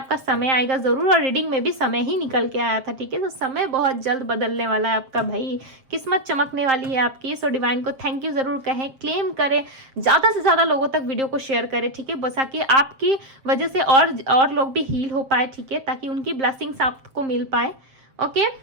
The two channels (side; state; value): left; late; 7.5 ms